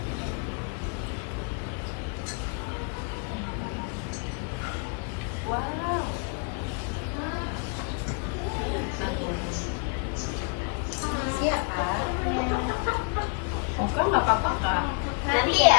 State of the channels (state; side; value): quieter; right; 38.0 dB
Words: Wow. Iya kak. Bukan, nggak apa-apa, Kak. Nanti